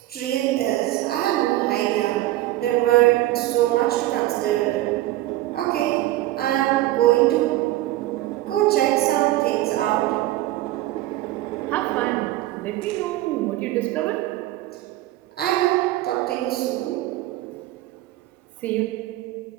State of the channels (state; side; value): quieter; left; 16.1 dB